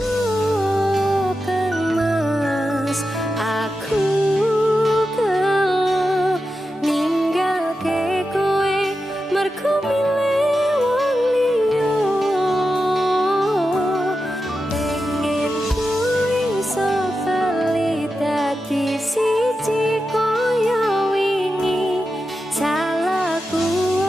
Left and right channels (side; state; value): both; normal; correlation 0.90